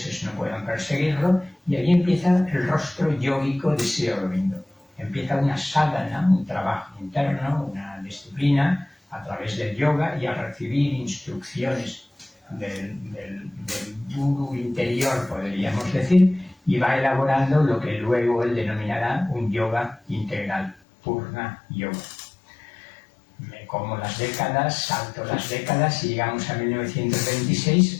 no puedan perseguirlo, y ahí empieza el rostro yógico de Sri Aurobindo. Empieza una sadhana, un trabajo interno, una disciplina a través del yoga, y al recibir instrucciones del guru interior, podríamos decir, y va elaborando lo que luego él denominará un yoga integral, Purna Yoga. Me como las décadas, salto las décadas y llegamos a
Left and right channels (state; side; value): drops out; right; at 20.8 s